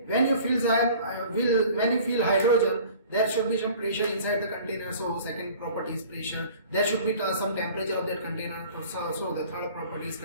when you fill hydrogen, there should be some pressure inside the container. So second property is pressure. There should be some temperature of that container. So the third property is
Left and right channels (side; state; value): both; inverted; correlation -0.47